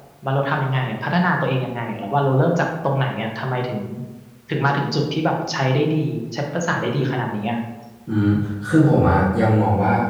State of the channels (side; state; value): both; identical; correlation 1.00